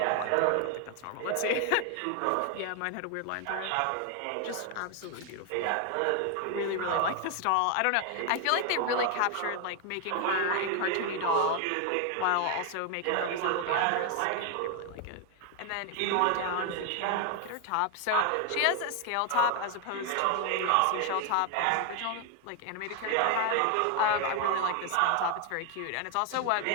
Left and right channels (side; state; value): both; different; correlation 0.01